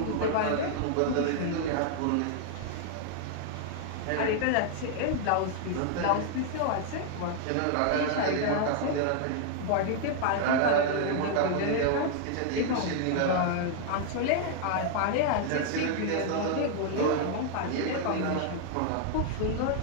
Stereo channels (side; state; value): both; different; correlation 0.00